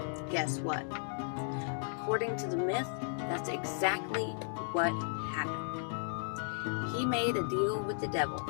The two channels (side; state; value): right; silent; digital silence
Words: guess what? According to the myth, that's exactly what happened. He made a deal with the devil,